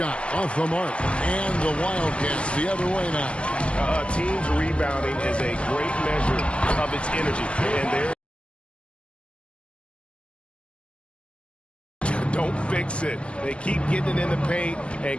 off the mark, and the Wildcats the other way now. A team's rebounding is a great measure of its energy, and there. Don't fix it. They keep getting it in the paint and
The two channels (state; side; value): late; right; 0.054 ms